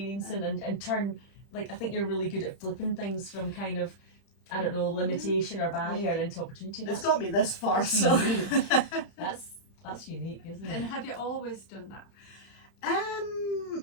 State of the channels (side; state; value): right; late; 31 ms